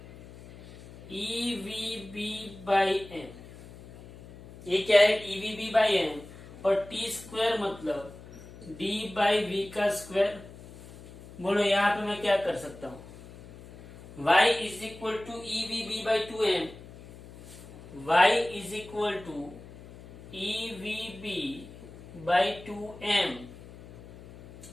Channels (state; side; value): noise; left; hum, 18 dB below the sound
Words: EVB/m, ये क्या है EVB/m, और T² मतलब D/v का स्क्वायर। बोलो यहाँ पे मैं क्या कर सकता हूँ, y is equal to EVB/2m, y is equal to EVB/2m,